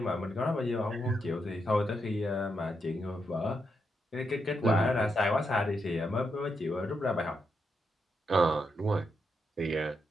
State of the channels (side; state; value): both; normal; correlation 0.82